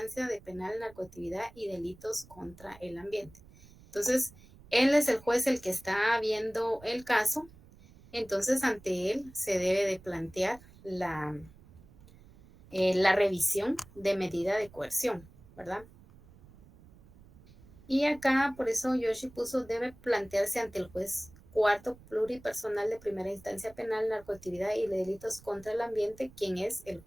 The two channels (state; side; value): noise; right; rumble, 23 dB below the sound